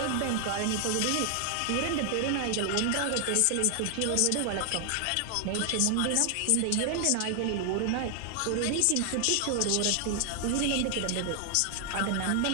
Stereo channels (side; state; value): both; different; correlation 0.00